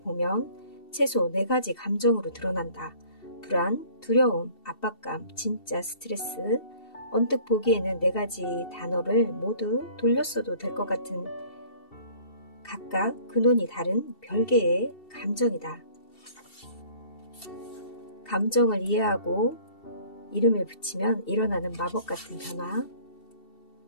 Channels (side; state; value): right; late; 2.7 ms